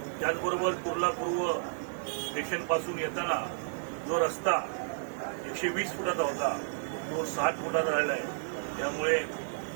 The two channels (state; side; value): silent; left; 57 dB below the other